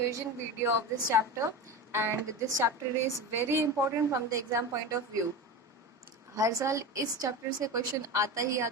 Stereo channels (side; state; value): both; normal; correlation 0.26